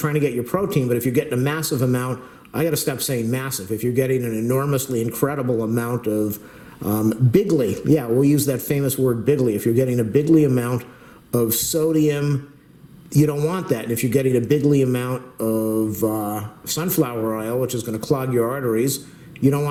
to get your protein, but if you're getting a massive amount, I got to stop saying massive. If you're getting an enormously incredible amount of bigly, yeah, we'll use that famous word bigly. If you're getting a bigly amount of sodium, you don't want that. And if you're getting a bigly amount of sunflower oil, which is going to clog your arteries, you don't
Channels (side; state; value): both; identical; correlation 1.00